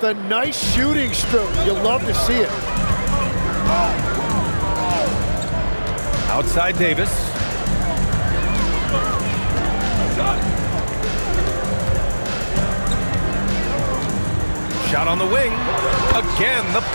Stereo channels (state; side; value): inverted; both; correlation -1.00